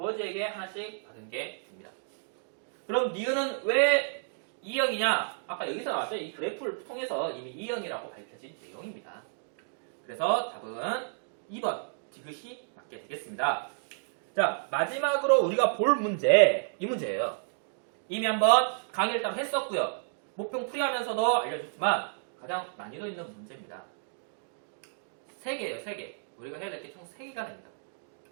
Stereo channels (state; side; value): silent; left; digital silence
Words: 하나씩 받은 게 됩니다. 그럼 니은은 왜 E형이냐? 아까 여기서 나왔죠? 이 그래프를 통해서 이미 E형이라고 밝혀진 내용입니다. 그래서 답은 2번 디귿이 맞게 되겠습니다. 자, 마지막으로 우리가 볼 문제, 이 문제예요. 이미 한번 강의를 따로 했었고요. 목표 풀이하면서도 알려줬지만 가장 난이도 있는 문제입니다. 3개예요, 3개. 우리가 해야 될 게 총 3개가 됩니다.